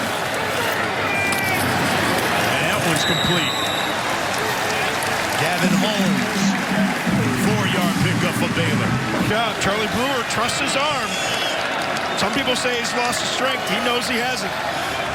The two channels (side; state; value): both; identical; correlation 1.00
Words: And that one's complete. Gavin Holmes, 4-yard pickup for Baylor. Yeah, Charlie Brewer trusts his arm. Some people say he's lost his strength. He knows he hasn't.